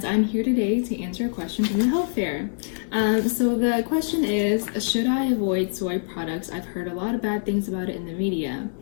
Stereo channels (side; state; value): right; silent; 62 dB below the other